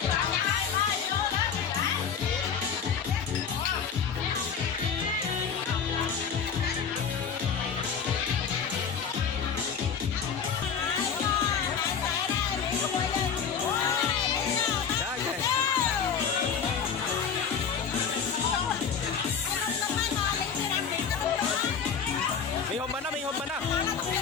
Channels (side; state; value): right; quieter; 6.7 dB